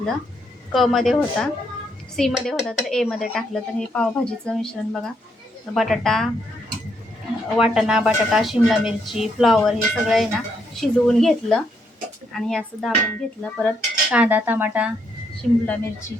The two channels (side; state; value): both; normal; correlation 0.75